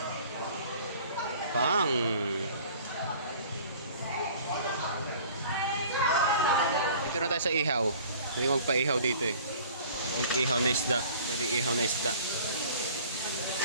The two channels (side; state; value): both; inverted; correlation -0.49